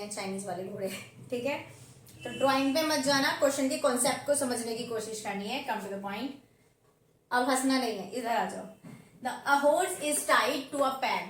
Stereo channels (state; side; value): identical; both; correlation 1.00